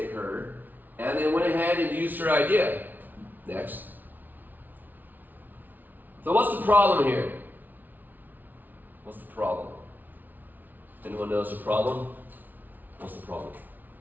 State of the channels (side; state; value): left; late; 0.083 ms